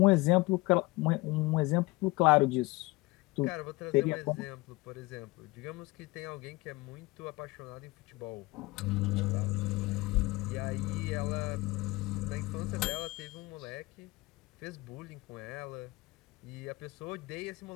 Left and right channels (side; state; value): right; quieter; 22.6 dB